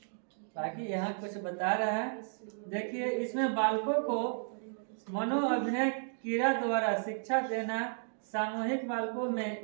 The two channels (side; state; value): left; silent; digital silence